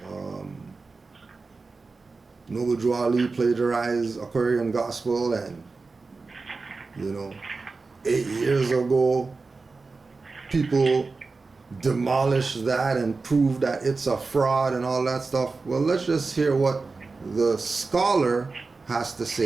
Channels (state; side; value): quieter; left; 4.0 dB